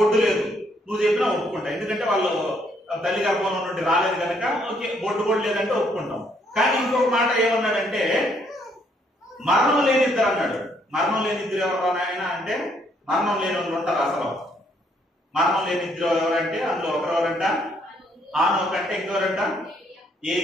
లేదు, నువ్వు చెప్పినా ఒప్పుకుంటా. ఎందుకంటే వాళ్ళు తల్లి గర్భంలో నుండి రాలేదు కనుక ఓకే, బొడ్డు కూడా లేదంటే ఒప్పుకుంటాం. కానీ ఇంకొక మాట ఏమన్నాడంటే మరణం లేని ఇద్దరు అన్నాడు. మరణం లేని ఇద్దరు ఎవరు ఆయన అంటే మరణం లేని వాళ్ళు ఉంటారు. అసలు మరణం లేని ఇద్దరు ఎవరంటే అందులో ఒకరెవరంట ఆనోకు అంటే ఇంకెవరంట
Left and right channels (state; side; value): normal; both; correlation 0.69